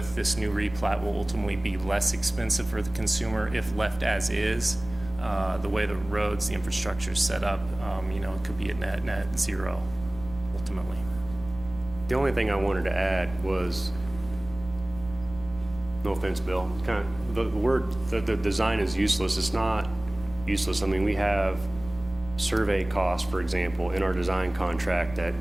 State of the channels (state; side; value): noise; right; rumble, 15 dB below the sound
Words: this new replat will ultimately be less expensive for the consumer if left as is. The way the roads, the infrastructure is set up, it could be a net zero ultimately. The only thing I wanted to add was, no offense, Bill, kind of the word, the design is useless. It's not useless. I mean, we have survey costs, for example, in our design contract that